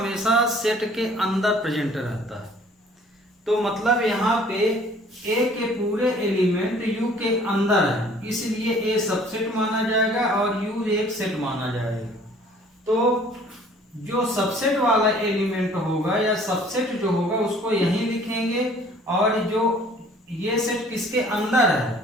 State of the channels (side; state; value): both; normal; correlation 0.54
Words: सेट के अंदर प्रेजेंट रहता है। तो मतलब यहाँ पे A के पूरे एलिमेंट U के अंदर है, इसलिए A सबसेट माना जाएगा और U एक सेट माना जाएगा। तो जो सबसेट वाला एलिमेंट होगा या सबसेट जो होगा उसको यहीं लिखेंगे, और जो ये सेट किसके अंदर